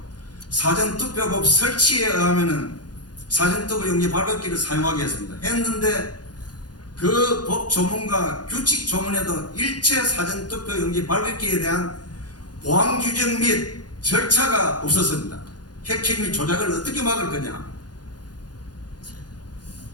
사전투표법 설치에 의하면은 사전투표용지 발급기를 사용하게 했습니다. 했는데 그 법 조문과 규칙 조문에도 일체 사전투표용지 발급기에 대한 보안 규정 및 절차가 없었습니다. 해킹 및 조작을 어떻게 막을 거냐?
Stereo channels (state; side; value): late; right; 0.69 ms